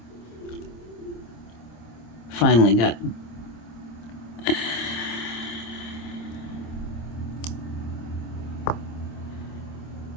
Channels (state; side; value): late; right; 26 ms